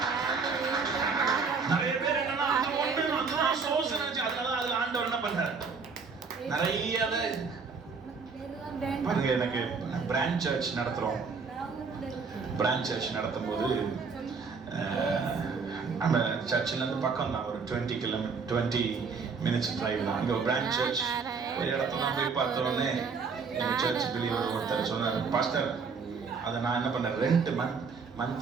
நிறைய பேர் என்னன்னா அந்த ஒண்ணு சோர்ஸ் நினைச்சு அதனால அதுல ஆண்டவர் என்ன பண்றாரு நிறைய பாருங்க. எனக்கு பிரான்ச் சர்ச் நடத்துறோம். பிரான்ச் சர்ச் நடத்தும் போது நம்ம சர்ச்சில் இருந்து பக்கம் தான், ஒரு 20 minutes டிரைவ் தான். அங்கே ஒரு பிரான்ச் சர்ச் ஒரு இடத்துல போய் பார்த்தோன்னே எங்கள் சர்ச் பிலீவர் ஒருத்தர் சொன்னார், பாஸ்டர் அதை நான் என்ன பண்ணேன், ரெண்ட்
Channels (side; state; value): left; quieter; 5.0 dB